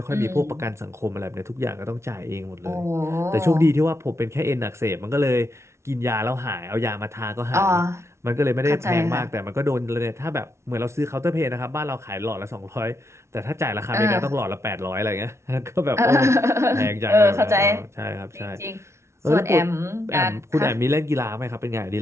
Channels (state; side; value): late; left; 0.13 ms